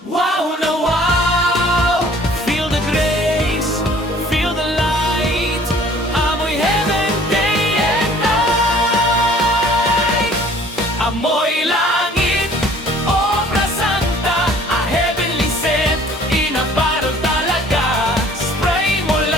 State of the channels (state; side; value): normal; both; correlation 0.53